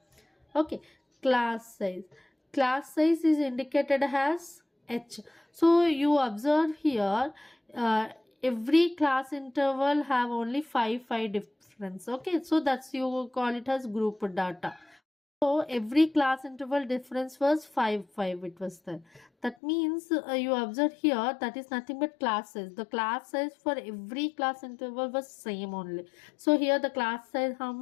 Okay, class size is indicated as H. So you observe here every class interval have only 5 difference. Okay, so that's you call it as group data. So every class interval difference was 5 it was there. That means you observe here that is nothing but class size. The class size for every class interval was same only. So here the class size how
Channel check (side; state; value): right; drops out; at 19.6 s